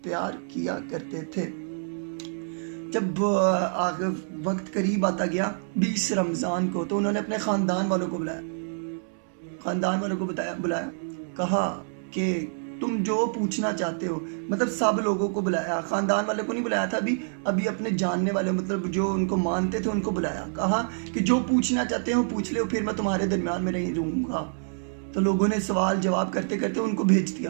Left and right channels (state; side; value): silent; left; 60 dB below the other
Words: پیار کیا کرتے تھے. جب وقت قریب آتا گیا 20 رمضان کو، تو انہوں نے اپنے خاندان والوں کو بلایا. کہا کہ تم جو پوچھنا چاہتے ہو، مطلب سب لوگوں کو بلایا. خاندان والے کو نہیں بلایا تھا ابھی اپنے جاننے والے، مطلب جو ان کو مانتے تھے ان کو بلایا. کہا کہ جو پوچھنا چاہتے ہو پوچھ لے، پھر میں تمہارے درمیان میں نہیں رہوں گا. تو لوگوں نے سوال جواب کرتے کرتے ان کو بھیج